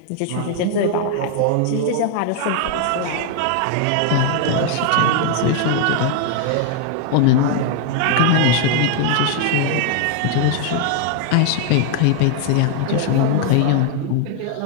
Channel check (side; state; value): both; different; correlation 0.00